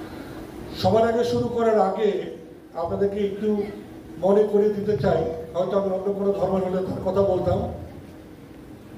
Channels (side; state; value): both; identical; correlation 1.00